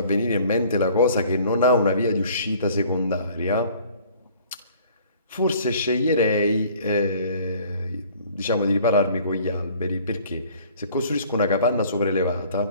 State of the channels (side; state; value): both; inverted; correlation -0.54